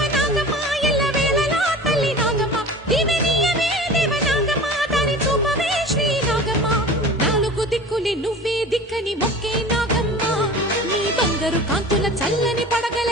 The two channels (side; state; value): both; normal; correlation 0.38